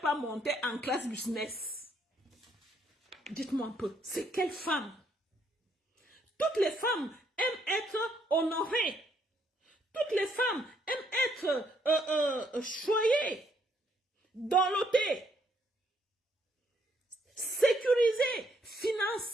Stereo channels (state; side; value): normal; both; correlation 0.70